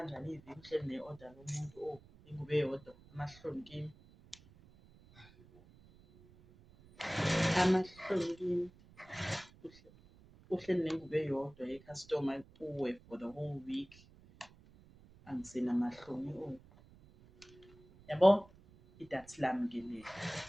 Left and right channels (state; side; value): noise; right; rumble, 24 dB below the sound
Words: iviki uhleli ne-order lomuntu ingubo eyodwa amahloni kimi uhleli nengubo eyodwa ye-customer kuwe for the whole week angisenamahloni yabo idathi lami ke leli